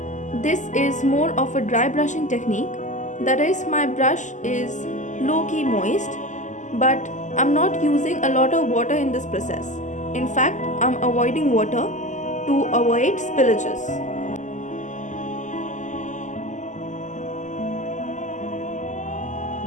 This is more of a dry brushing technique, that is, my brush is low-key moist, but I'm not using a lot of water in this process. In fact, I'm avoiding water to avoid spillages.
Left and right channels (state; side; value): late; right; 0.36 ms